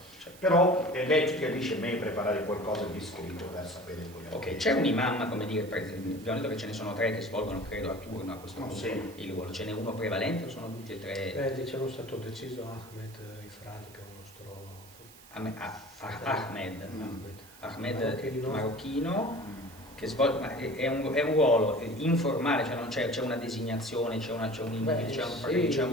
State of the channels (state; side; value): noise; right; hiss, 21 dB below the sound